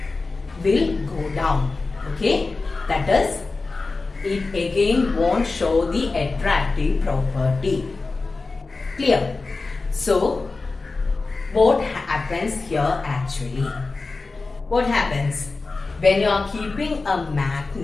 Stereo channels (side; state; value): right; quieter; 3.8 dB